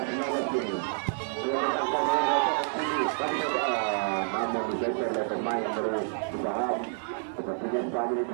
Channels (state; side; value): silent; left; digital silence